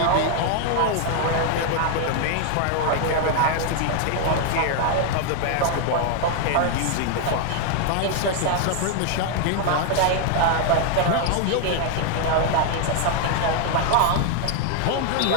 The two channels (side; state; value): both; different; correlation 0.00